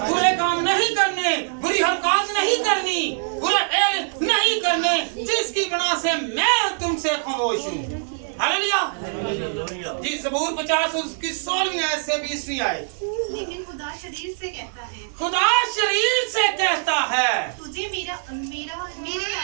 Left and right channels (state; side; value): silent; left; digital silence